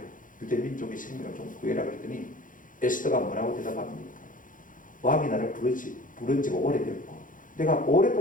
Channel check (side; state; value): right; late; 0.39 ms